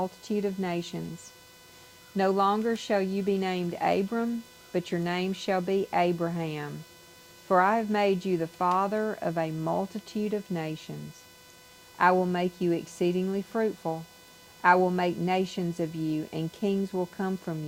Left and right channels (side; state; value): both; identical; correlation 1.00